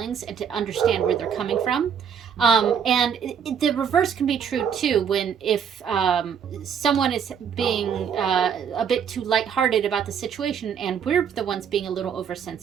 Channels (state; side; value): quieter; left; 7.6 dB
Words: and to understand where they're coming from. And the reverse can be true too, when if someone is being a bit too lighthearted about the situation and we're the ones being a little